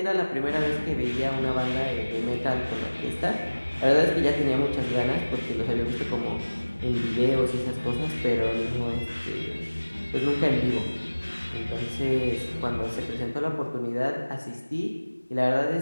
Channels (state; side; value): inverted; both; correlation -1.00